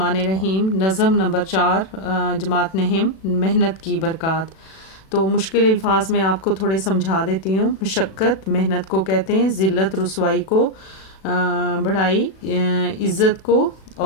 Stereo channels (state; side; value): late; right; 37 ms